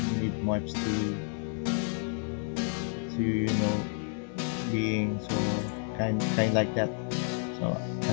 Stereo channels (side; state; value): right; silent; 58 dB below the other